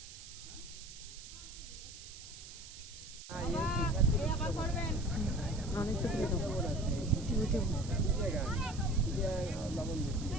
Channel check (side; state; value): right; noise; hiss, 14 dB below the sound